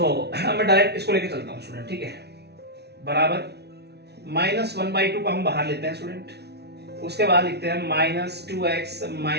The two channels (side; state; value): left; late; 0.49 ms